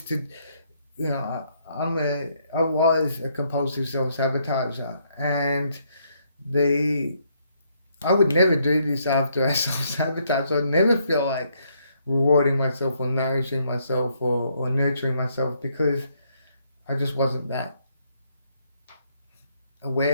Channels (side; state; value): both; inverted; correlation -0.72